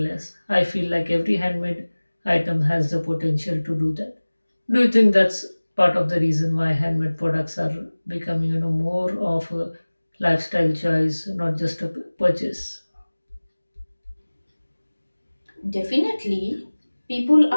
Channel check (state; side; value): inverted; both; correlation -1.00